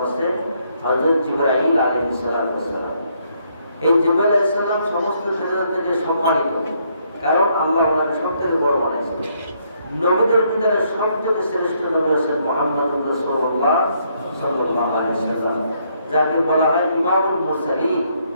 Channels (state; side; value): inverted; both; correlation -0.72